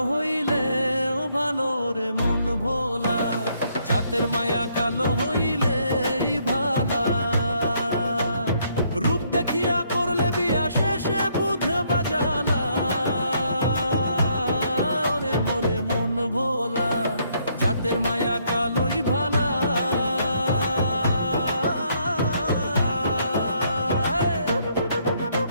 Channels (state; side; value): inverted; both; correlation -0.70